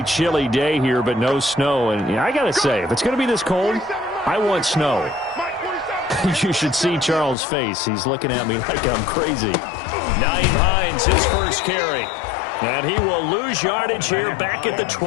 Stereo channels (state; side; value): drops out; right; at 7.4 s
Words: chilly day here, but no snow. And I got to say, if it's going to be this cold, I want snow. You should see Charles' face. He's looking at me like I'm crazy. Nyheim Hines, his first carry. And he will lose yardage here back at the